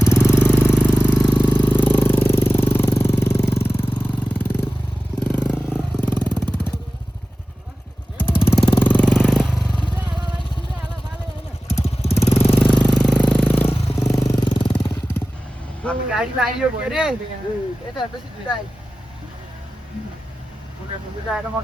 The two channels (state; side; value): normal; both; correlation 0.94